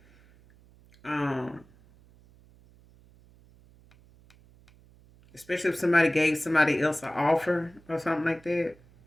especially if somebody gave somebody else an offer or something like that.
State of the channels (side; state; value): right; noise; hum, 28 dB below the sound